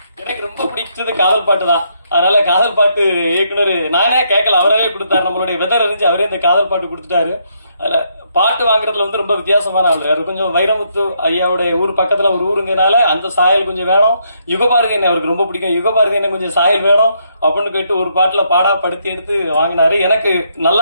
எனக்கு ரொம்ப பிடிச்சது காதல் பாட்டு தான். அதனால காதல் பாட்டு இயக்குனர் நானே கேட்கல, அவரவே கொடுத்தாரு. நம்மளுடைய வெதர் அறிஞ்சு அவரே இந்த காதல் பாட்டு கொடுத்துட்டாரு. அதுல பாட்டு வாங்குறதுல வந்து ரொம்ப வித்தியாசமான ஆளு. அது கொஞ்சம் வைரமுத்து ஐயாவுடைய ஊர் பக்கத்துல ஒரு ஊருங்கனால அந்த சாயல் கொஞ்சம் வேணும். யுகபாரதி என்ன அவருக்கு ரொம்ப பிடிக்கும், யுகபாரதி என்ன கொஞ்சம் சாயல் வேணும் அப்படின்னு கேட்டு ஒரு பாட்டுல பாடா படுத்தி எடுத்து வாங்கினாரு. எனக்கு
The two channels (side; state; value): both; inverted; correlation -0.74